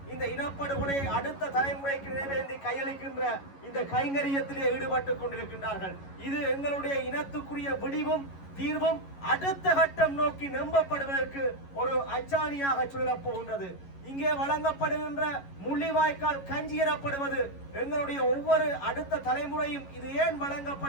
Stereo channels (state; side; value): late; right; 11 ms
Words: இந்த இனப்படுகொலையை அடுத்த தலைமுறைக்கு நினைவேந்தி கையளிக்கின்ற இந்த கைங்கரியத்திலே ஈடுபட்டுக் கொண்டிருக்கின்றார்கள். இது எங்களுடைய இனத்துக்குரிய விடிவும் தீர்வும் அடுத்த கட்டம் நோக்கி நம்பப்படுவதற்கு ஒரு அச்சாணியாக சொல்லப் போகின்றது. இங்கே வழங்கப்படுகின்ற முள்ளிவாய்க்கால் கஞ்சி எனப்படுவது எங்களுடைய ஒவ்வொரு அடுத்த தலைமுறையும் இது ஏன்